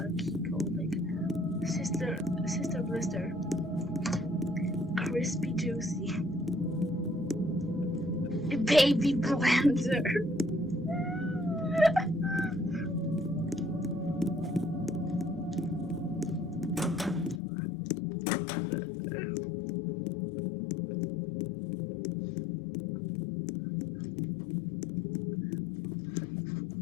key code, like Sister Blister, Crispy Juicy, Baby Blender.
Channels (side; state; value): right; drops out; at 17.4 s